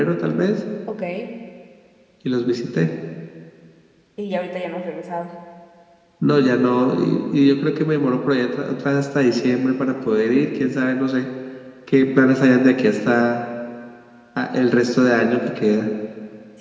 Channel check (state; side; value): identical; both; correlation 1.00